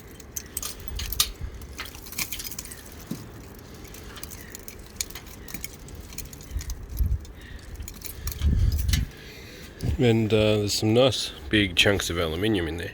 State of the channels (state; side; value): identical; both; correlation 1.00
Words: And there's some nice big chunks of aluminium in there,